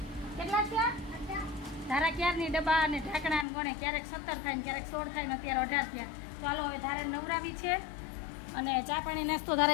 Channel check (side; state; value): right; drops out; at 3.5 s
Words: કેટલા થયા ધારા ક્યારની ડબ્બા અને ઢાંકણા ને ગણે ક્યારેક 17 થાય ને ક્યારેક 16 થાય ને અત્યારે 18 થયા. તો હાલો હવે ધારા નવરાવી છે અને ચા પાણી નાસ્તો